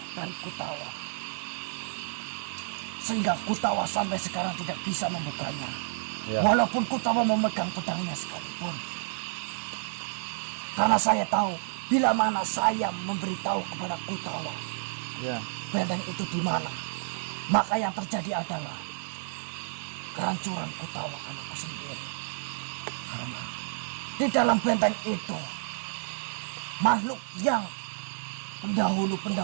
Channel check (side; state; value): left; silent; digital silence